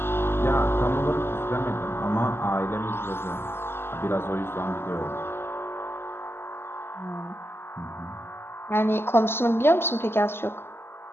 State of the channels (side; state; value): right; late; 0.11 ms